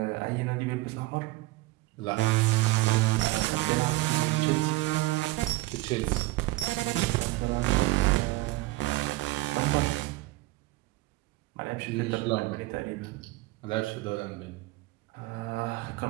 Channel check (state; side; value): quieter; left; 19.4 dB